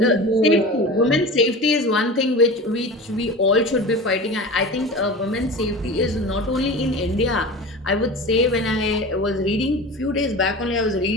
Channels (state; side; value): normal; both; correlation 0.32